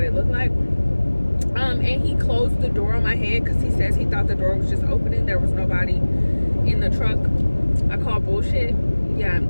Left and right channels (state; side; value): inverted; both; correlation -1.00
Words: it looked like. And he closed the door on my head, because he says he thought the door was just opening. There was nobody in the truck. I call bullshit. Yeah,